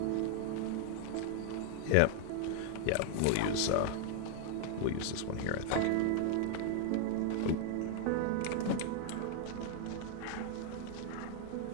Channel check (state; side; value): different; both; correlation 0.00